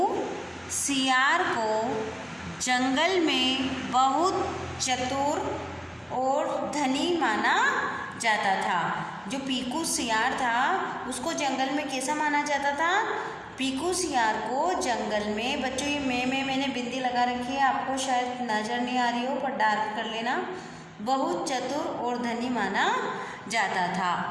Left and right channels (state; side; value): identical; both; correlation 1.00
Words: सियार को जंगल में बहुत चतुर और धनी माना जाता था। जो पीकू सियार था उसको जंगल में कैसा माना जाता था। पीकू सियार को जंगल में, बच्चों ये मैंने बिंदी लगा रखी है, आपको शायद नज़र नहीं आ रही हो पर डार्क कर लेना। बहुत चतुर और धनी माना जाता था।